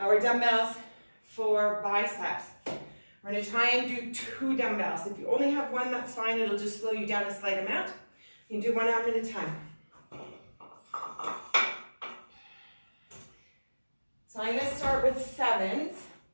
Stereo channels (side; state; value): both; inverted; correlation -1.00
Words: dumbbells for biceps. We're going to try and do 2 dumbbells. If you only have 1, that's fine. It'll just slow you down a slight amount. You can do 1 arm at a time. So I'm going to start with 7s.